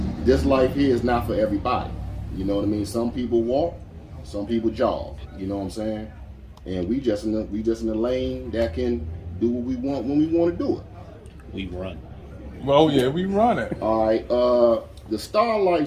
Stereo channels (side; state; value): both; identical; correlation 1.00